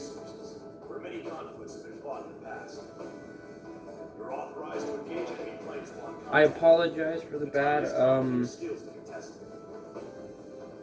where many conflicts have been fought in the past. You're authorized to engage enemy planes on contact. I apologize for the bad,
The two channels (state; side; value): identical; both; correlation 1.00